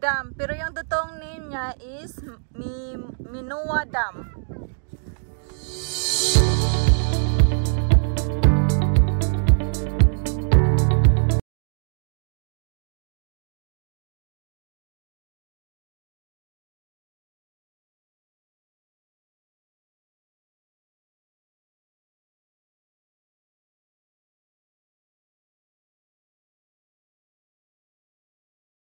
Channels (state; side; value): silent; left; digital silence